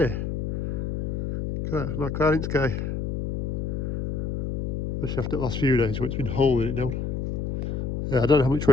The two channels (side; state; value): left; noise; hum, 2 dB below the sound